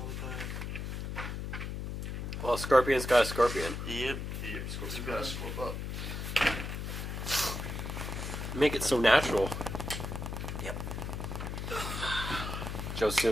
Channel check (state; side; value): noise; left; hum, 5 dB below the sound